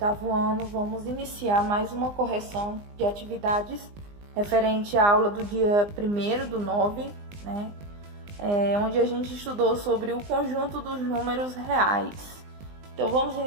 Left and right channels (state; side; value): late; left; 20 ms